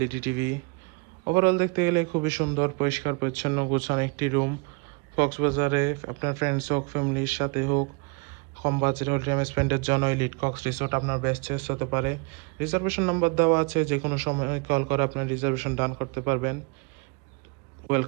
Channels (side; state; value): left; quieter; 29.5 dB